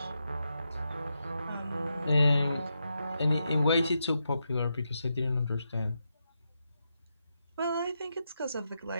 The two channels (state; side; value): inverted; both; correlation -0.85